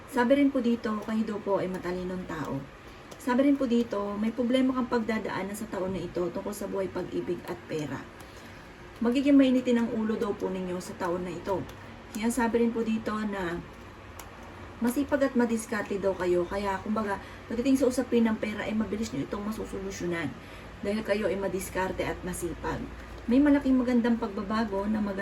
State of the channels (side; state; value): both; identical; correlation 1.00